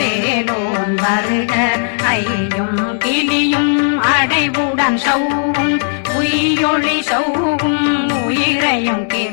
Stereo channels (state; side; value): silent; right; digital silence